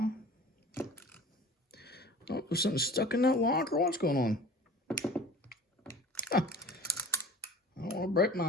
Oh, there's something stuck in that lock, or what's going on? Huh. I don't want to break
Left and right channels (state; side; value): normal; both; correlation 0.42